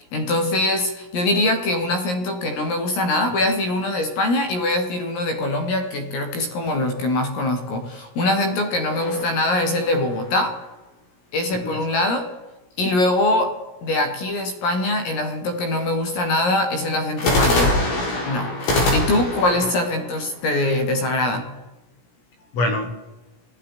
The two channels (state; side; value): late; right; 17 ms